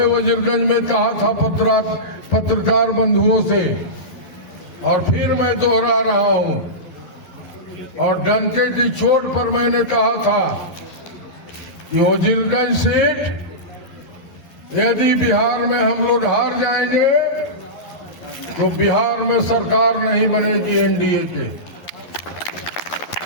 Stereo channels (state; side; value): late; right; 11 ms